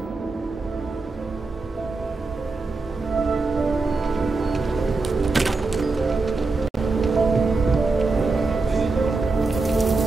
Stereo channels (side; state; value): left; quieter; 3.7 dB